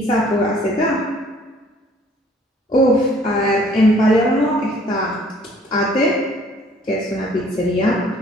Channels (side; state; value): both; normal; correlation 0.57